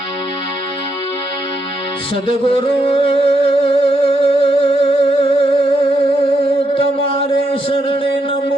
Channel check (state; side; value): normal; both; correlation 0.79